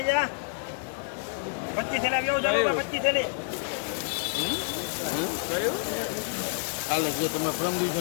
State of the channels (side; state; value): right; silent; 59 dB below the other